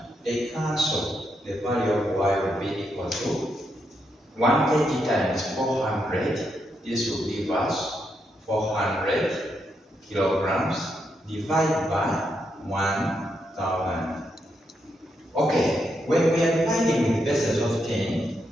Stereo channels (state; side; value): normal; both; correlation 0.81